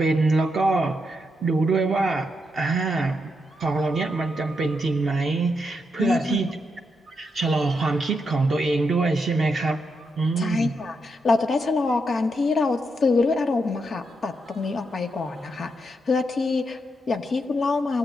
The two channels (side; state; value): both; normal; correlation 0.82